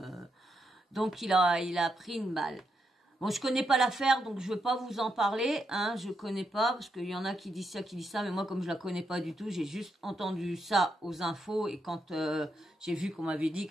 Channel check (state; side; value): normal; both; correlation 0.82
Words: donc il a pris une balle. Bon, je connais pas l'affaire, donc je veux pas vous en parler, hein, je connais pas, parce qu'il y en a qui disent ça, mais moi, comme je la connais pas du tout, j'ai juste entendu ça aux infos, et quand j'ai vu qu'on m'avait dit